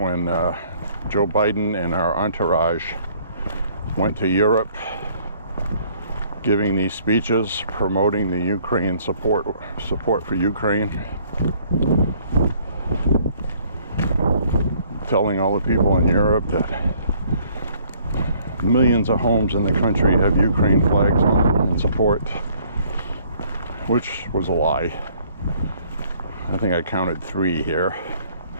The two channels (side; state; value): both; inverted; correlation -0.60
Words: Joe Biden and our entourage went to Europe giving these speeches promoting the Ukraine support for Ukraine. Telling all the people in Europe that millions of homes in the country have Ukraine flags on in support, which was a lie. I think I counted 3 here.